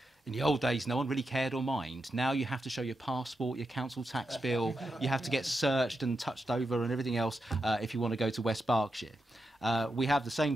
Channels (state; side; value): normal; both; correlation 0.86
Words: in the old days, no one really cared or mind. Now you have to show your passport, your council tax bill, you have to get searched and touched over and everything else if you want to go to West Berkshire. We have the same